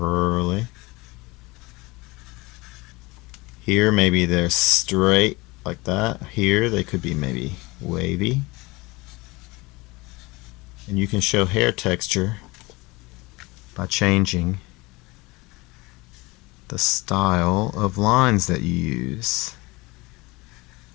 Here maybe they're straight like that. Here they could be maybe wavy. And you can show hair texture by changing the style of lines that you use.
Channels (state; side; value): quieter; right; 23.2 dB